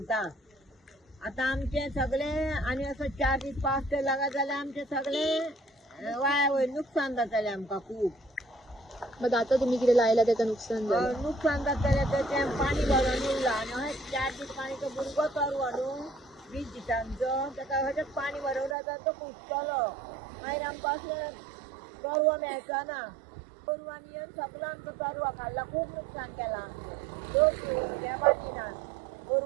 आता आमचे सगळे आणि असं 4 दीस पावस तर लागत जाल्यार आमचे सगळे वाया वयर नुकसान जातले आमकां खूब. मग आता तुम्ही कितें लायला त्याचं नुकसान झालं? नुकसान जातले तर ते पाणी भरून उरला आणि अशें 4 दीस पाणीचो भुरगो तरवो न्हू 20 दिसांचो ताका अशेंच पाणी भरून रावता तो कुसतलो. मागीर आमकां अशें तरवो मेळचो ना. तरवो आमी येवन सगळो आमचो तरवो खाल्ला. खूब नुकसान केलां आमचें. हे बांदिनात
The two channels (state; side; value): drops out; left; at 18.8 s